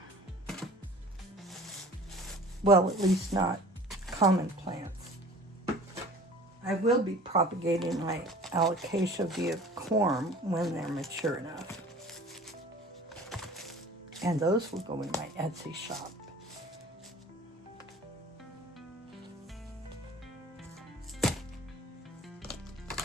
Well, at least not common plants. I will be propagating my alocasia via corm when they're mature enough. And those will go in my Etsy shop.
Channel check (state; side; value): normal; both; correlation 0.45